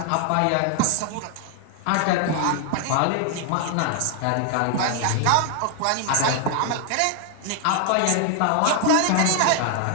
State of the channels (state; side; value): different; both; correlation 0.00